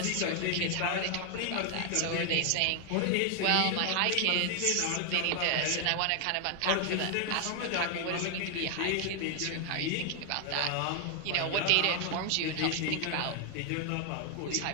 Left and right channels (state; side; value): different; both; correlation 0.00